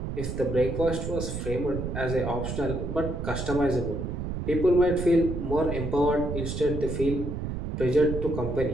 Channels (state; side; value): noise; right; rumble, 4 dB below the sound